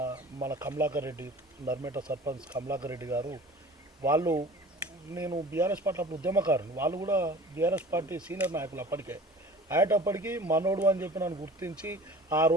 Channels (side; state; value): both; normal; correlation 0.42